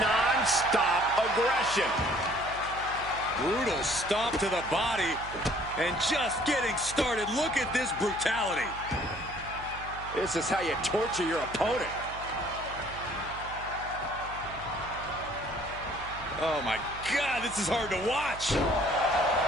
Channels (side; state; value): right; noise; hum, 14 dB below the sound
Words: aggression. Brutal stomp to the body. And just getting started. Look at this brutality. This is how you torture your opponent. Oh my God, this is hard to watch.